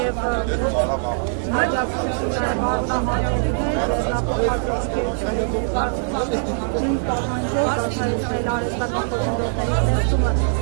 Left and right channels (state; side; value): silent; left; digital silence